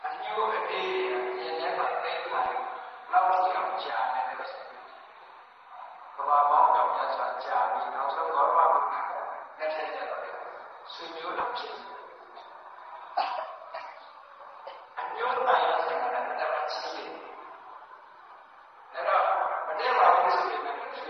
အညို့အသေးရင်းနဲ့ပတ်သက်လာလောက်ကြည့်အောင်ကြားနေတယ်ဆိုကဘာပေါင်းတော့မြတ်စွာကြားပြီးနောက်ဆုံးတော့ဘာလို့လက်ထက်ကျတော့ဆွေမျိုးတော်ဖြစ်အညို့တိုင်းရတဲ့ကတော့ချီးတယ်အဲ့တော့မတည့်ပါဘူးဆိုရင်လည်းဆွေ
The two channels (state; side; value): identical; both; correlation 1.00